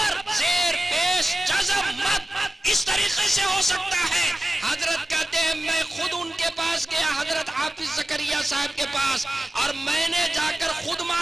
जेर पेश जज़म मद इस तरीके से हो सकता है। हजरत कहते हैं मैं खुद उनके पास गया, हजरत हाफिज जकरिया साहब के पास और मैंने जाकर खुद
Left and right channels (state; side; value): normal; both; correlation 0.95